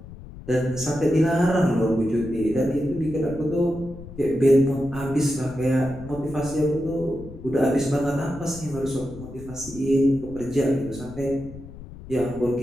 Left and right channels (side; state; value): left; noise; rumble, 15 dB below the sound